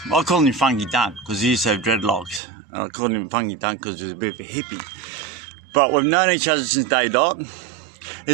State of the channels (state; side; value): drops out; left; at 2.4 s